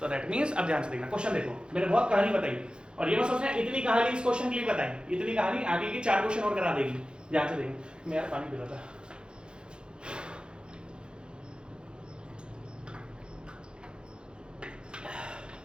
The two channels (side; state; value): left; late; 0.051 ms